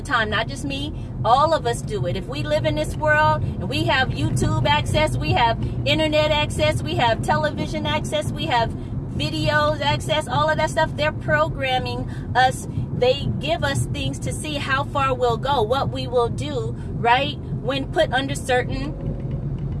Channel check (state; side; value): identical; both; correlation 1.00